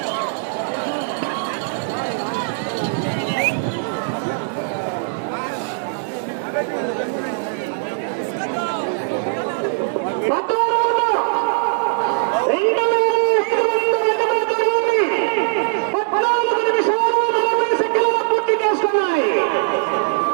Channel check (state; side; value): silent; left; digital silence